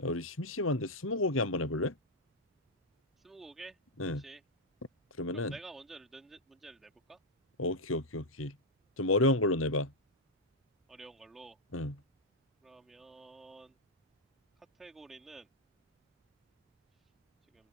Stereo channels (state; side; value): normal; both; correlation -0.02